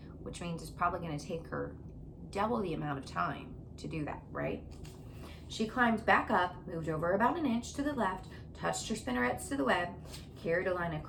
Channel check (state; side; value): identical; both; correlation 1.00